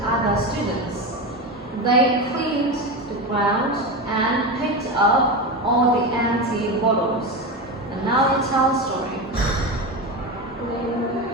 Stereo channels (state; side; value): normal; both; correlation 0.19